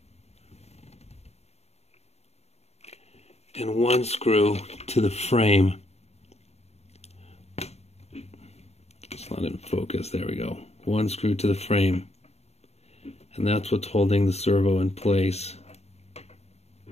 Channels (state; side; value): late; right; 0.31 ms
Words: and 1 screw to the frame. It's not in focus, there we go. 1 screw to the frame, and that's what's holding the servo in place.